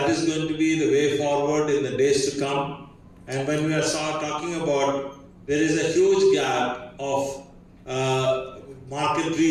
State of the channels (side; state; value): both; identical; correlation 1.00